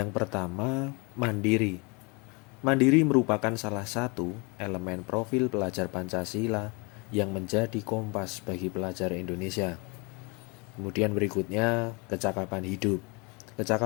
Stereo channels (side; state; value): right; quieter; 30.0 dB